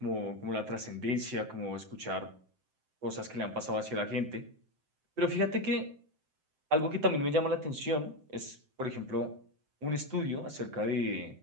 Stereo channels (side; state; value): left; late; 7.7 ms